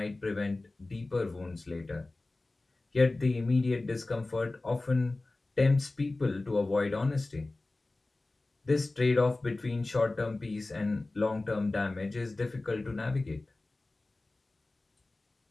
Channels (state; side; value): quieter; right; 3.1 dB